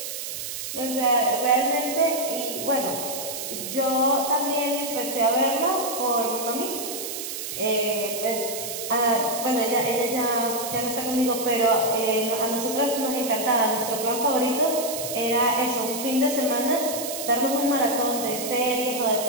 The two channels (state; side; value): noise; right; hiss, 6 dB below the sound